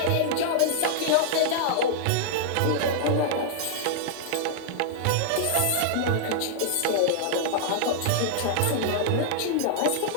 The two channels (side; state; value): both; different; correlation -0.01